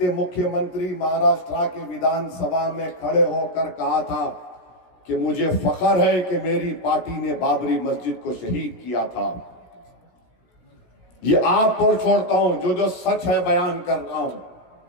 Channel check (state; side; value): late; right; 17 ms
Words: मुख्यमंत्री महाराष्ट्र के विधानसभा में खड़े होकर कहा था कि मुझे फख्र है कि मेरी पार्टी ने बाबरी मस्जिद को शहीद किया था। ये आप पर छोड़ता हूं, जो जो सच है बयान कर रहा हूं,